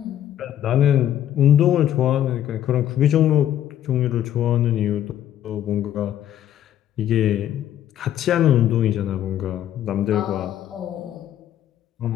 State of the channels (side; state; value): right; quieter; 11.3 dB